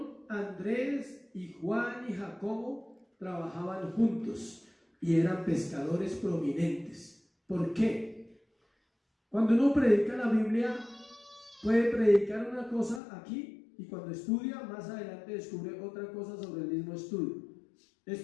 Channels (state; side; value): drops out; right; at 13.0 s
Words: Andrés y Juan y Jacobo trabajaban juntos y eran pescadores prominentes. ¿Por qué? Cuando uno predica la Biblia, puede predicar una cosa aquí y cuando estudia, más adelante descubre otra cosa sobre el mismo estudio.